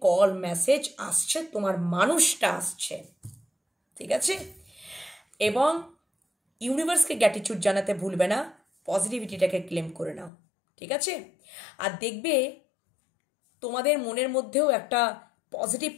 কল মেসেজ আসছে, তোমার মানুষটা আসছে, ঠিক আছে? এবং ইউনিভার্সকে গ্র্যাটিটিউড জানাতে ভুলবে না, পজিটিভিটিটাকে ক্লেম করে নাও, ঠিক আছে? আর দেখবে তোমাদের মনের মধ্যেও একটা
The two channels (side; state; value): right; drops out; at 10.3 s